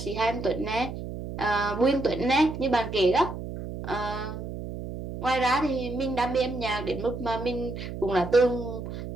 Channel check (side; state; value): right; noise; hum, 8 dB below the sound